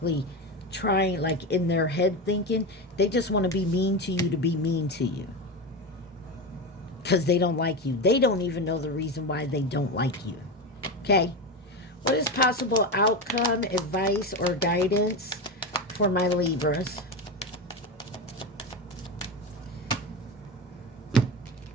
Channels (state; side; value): normal; both; correlation 0.19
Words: trying, like in their head thinking. They just want to be mean to you to be mean to you. Because they don't like you. They don't even know the reason why they don't like you. Okay? What is possible outcome, advice, or guidance for my Libras?